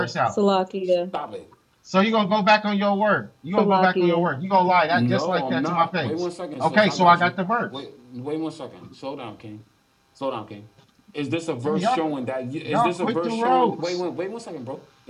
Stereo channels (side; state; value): both; identical; correlation 1.00